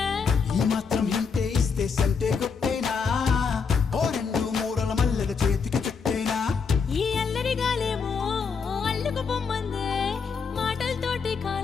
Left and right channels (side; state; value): right; quieter; 5.6 dB